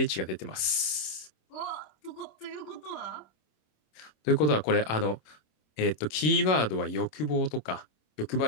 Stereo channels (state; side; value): late; right; 26 ms